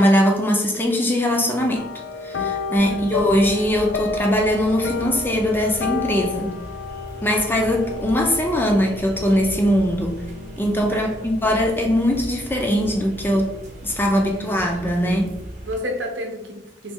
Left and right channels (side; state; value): both; normal; correlation 0.70